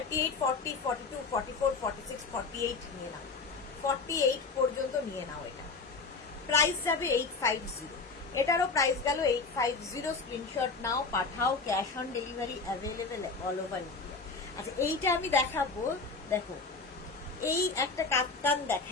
40, 42, 44, 46, 48 নিয়ে নাও, 48 পর্যন্ত নিয়ে নাও। এটা প্রাইস যাবে 850, এটারও প্রাইস গেল 850। স্ক্রিনশট নাও, পাঠাও। Cash on delivery available all over India. আচ্ছা এইটা আমি দেখাবো, দেখো এই একটা কাপ্তান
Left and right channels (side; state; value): right; quieter; 4.2 dB